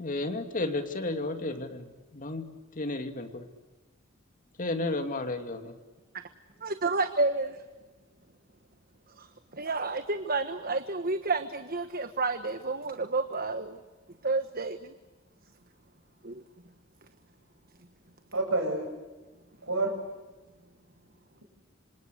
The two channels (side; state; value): both; normal; correlation -0.18